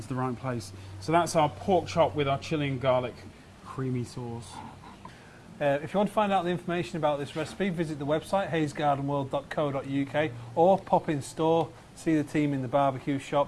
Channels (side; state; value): both; identical; correlation 1.00